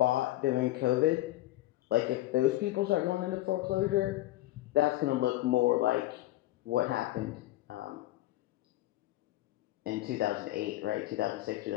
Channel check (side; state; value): right; quieter; 16.2 dB